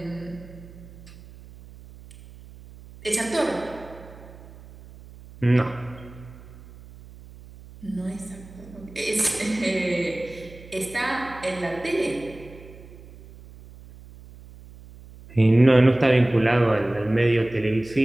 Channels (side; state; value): right; noise; hum, 19 dB below the sound